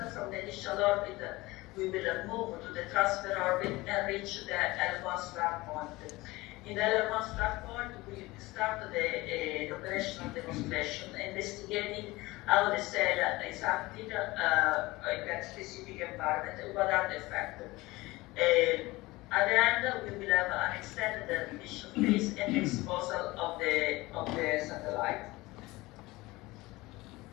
From the initial orbit, we will move to the transfer orbit and reach the L1 start point. In the L1 start point, we start the operational demonstration, investigating how the cell is acting in that specific environment and what are the effects. At the end, we will have an extended mission phase and exposure of the satellite.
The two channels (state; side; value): quieter; right; 20.6 dB